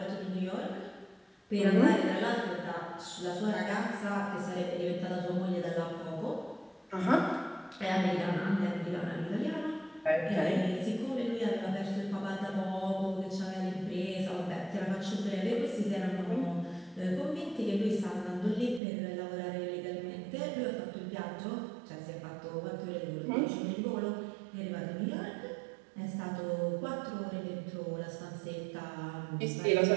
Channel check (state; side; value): drops out; left; at 18.8 s